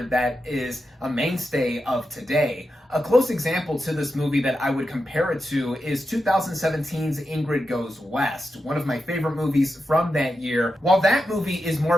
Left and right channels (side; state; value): both; normal; correlation 0.88